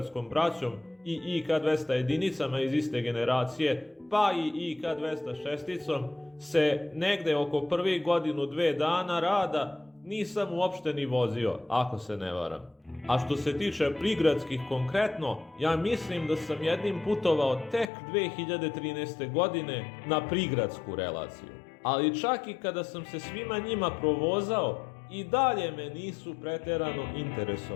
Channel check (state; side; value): drops out; right; at 17.9 s